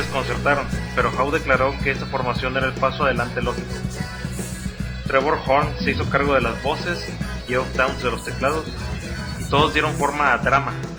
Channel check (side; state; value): both; identical; correlation 1.00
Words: pero Howe declaró que esta formación era el paso adelante lógico. Trevor Horn se hizo cargo de las voces, Geoff Downes de los teclados, y todos dieron forma a Drama,